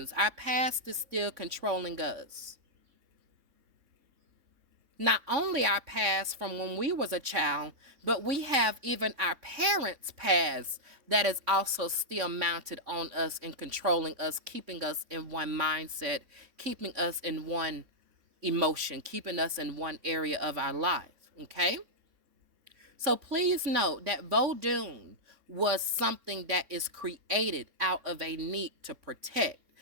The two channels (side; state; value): left; late; 3.5 ms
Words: Our past is still controlling us. Not only our past from when we was a child, but we have even our parents' past that is also still mounted on us and controlling us, keeping us in one mindset, keeping us in one emotion, keeping us in one area of our life. Okay? So please note that Vodun was something that is created out of a need to protect.